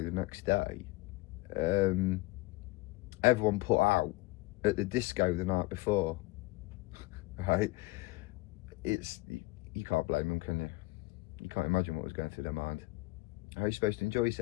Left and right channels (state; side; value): quieter; right; 21.8 dB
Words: the next day, everyone put out at the disco the night before. Right? You can't blame them, can you? You can't imagine what was going through their mind. How are you supposed to enjoy